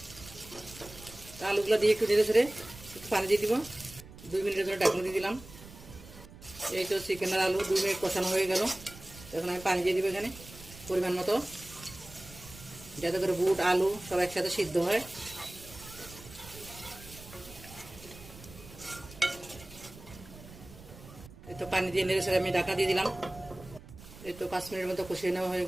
আলুগুলো দিয়ে একটু নেড়ে ছেড়ে একটু পানি দিয়ে দিব। 2 মিনিটের জন্য ঢাকনা দিয়ে দিলাম। এই তো চিকেন আর আলু 2 মিনিট কষানো হয়ে গেল। এখন আমি পানি দিয়ে দিব এখানে পরিমাণ মতো, যাতে করে বুট আলু সব একসাথে সিদ্ধ হয়। এই তো পানি দিয়ে নেড়ে ছেড়ে আমি ঢাকা দিয়ে দিলাম। এই তো 5 মিনিটের মতো কষিয়ে নেওয়া হয়ে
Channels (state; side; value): noise; right; rumble, 17 dB below the sound